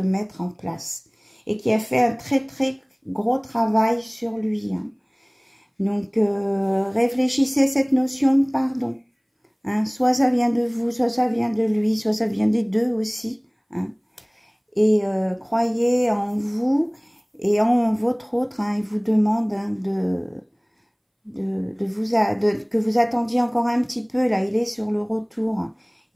mettre en place. et qui a fait un très très gros travail sur lui. Hein. Donc, réfléchissez à cette notion de pardon. Hein. Soit ça vient de vous, soit ça vient de lui, soit ça vient des deux aussi. Hein. Et croyez en vous et en votre autre. Hein. Il vous demande hein, que vous attendiez encore un petit peu. Là, il est sur le retour.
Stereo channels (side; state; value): both; identical; correlation 1.00